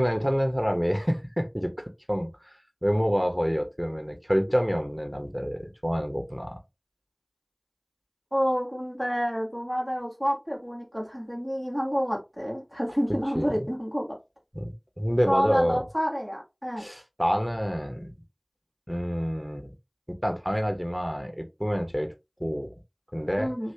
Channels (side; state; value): both; identical; correlation 1.00